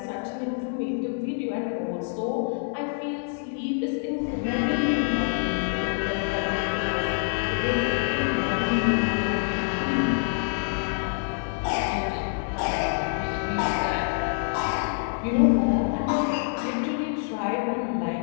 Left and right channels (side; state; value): right; silent; 61 dB below the other